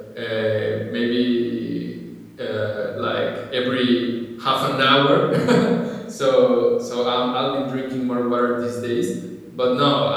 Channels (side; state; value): both; identical; correlation 1.00